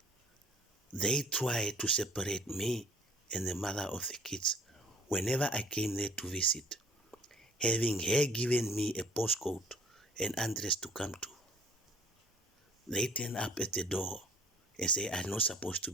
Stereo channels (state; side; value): normal; both; correlation 0.54